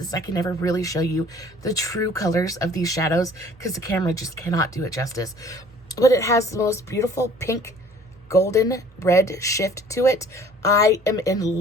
I can never really show you the true colors of these shadows because the camera just cannot do it justice. But it has the most beautiful pink golden red shift to it. I am in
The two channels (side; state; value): both; normal; correlation 0.52